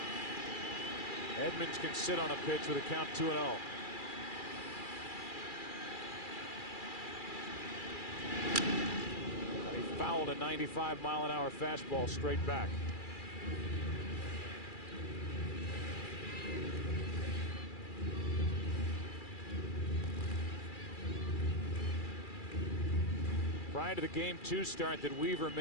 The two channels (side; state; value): right; late; 2.4 ms